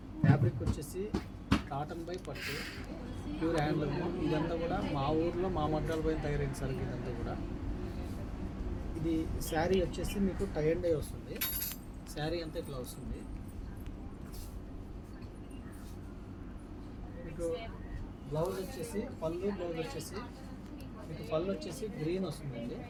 ఫ్యాబ్రిక్ వచ్చేసి కాటన్ బై పట్టు, ప్యూర్ హ్యాండ్లూమ్. ఇదంతా కూడా మా ఊర్లో మా మగ్గాల పైన తయారైన సరుకు ఇదంతా కూడా. ఇది శారీ వచ్చేసి మీకు టై అండ్ డై వస్తుంది. శారీ అంతా ఇట్లా వస్తుంది. మీకు బ్లౌజ్ వచ్చేసి బ్లౌజ్ వచ్చేసి మీకు పళ్ళు వచ్చేసి గ్రీన్ వస్తుందండి.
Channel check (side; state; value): both; identical; correlation 1.00